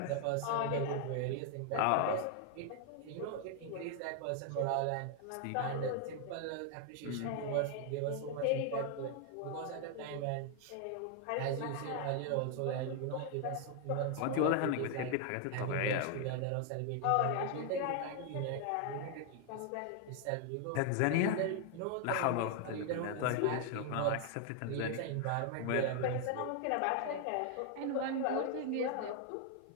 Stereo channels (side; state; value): both; different; correlation 0.00